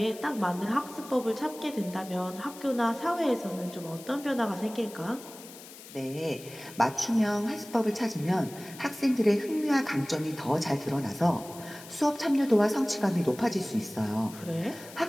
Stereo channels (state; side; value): noise; left; hiss, 17 dB below the sound